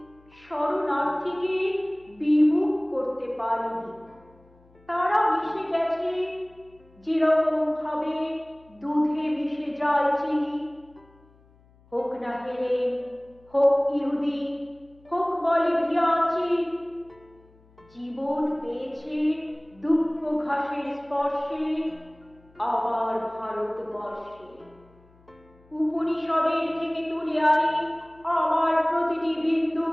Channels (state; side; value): noise; left; hum, 29 dB below the sound